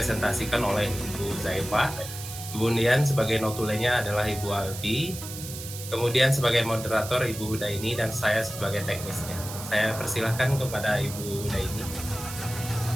oleh Ibu Zaifah. Kemudian sebagai notulenya adalah Ibu Albi. Kemudian sebagai moderator Ibu Hudaini dan saya sebagai teknisnya. Saya persilahkan kepada Ibu Hudaini.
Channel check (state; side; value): noise; right; hiss, 10 dB below the sound